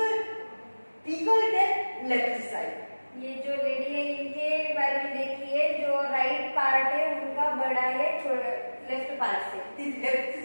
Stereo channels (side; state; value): both; inverted; correlation -1.00